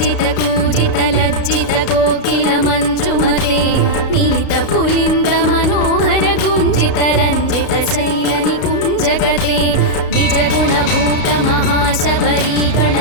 ಲಜ್ಜಿತ ಕೋಕಿಲ ಮಂಜುಮತೆ ಮಿಲಿತ ಪುಲಿಂದ ಮನೋಹರ ಗುಂಜಿತ ರಂಜಿತ ಶೈಲ ನಿಕುಂಜಗತೆ ನಿಜ ಗುಣಭೂತ ಮಹಾಶಬರಿ ಗಣ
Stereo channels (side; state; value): right; late; 33 ms